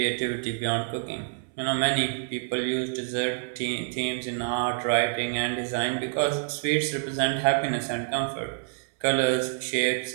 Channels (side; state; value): left; silent; 60 dB below the other